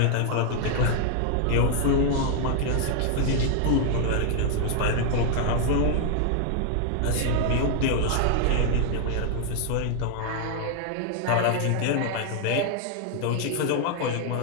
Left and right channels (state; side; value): different; both; correlation 0.00